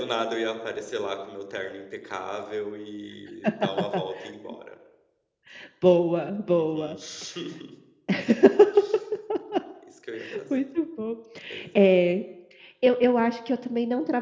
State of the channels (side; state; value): both; identical; correlation 1.00